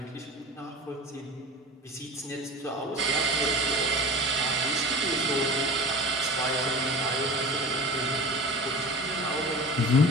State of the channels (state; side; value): normal; both; correlation 0.35